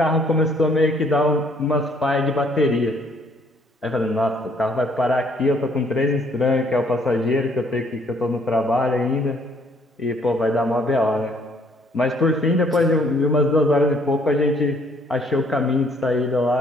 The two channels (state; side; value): normal; both; correlation 0.64